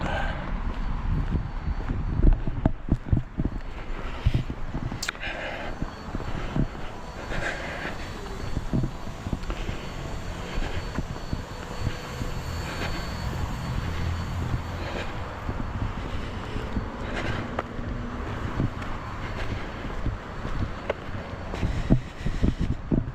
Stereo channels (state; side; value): identical; both; correlation 1.00